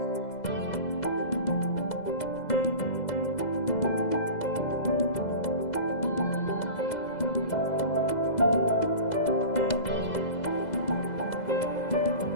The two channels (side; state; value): right; late; 2.0 ms